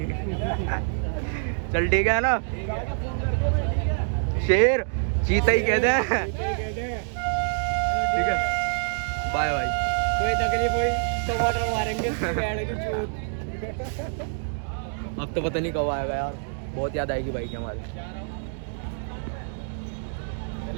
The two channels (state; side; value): silent; left; digital silence